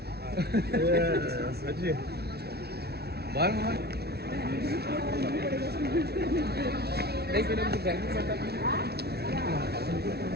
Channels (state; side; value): late; left; 0.47 ms